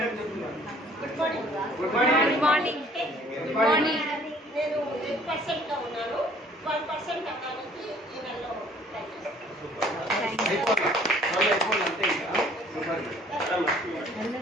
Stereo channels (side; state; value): both; normal; correlation 0.56